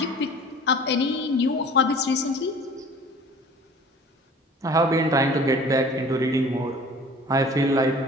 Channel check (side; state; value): both; normal; correlation 0.46